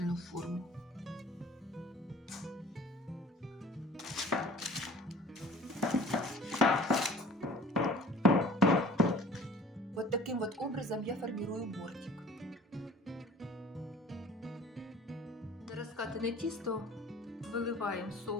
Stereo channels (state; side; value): normal; both; correlation 0.48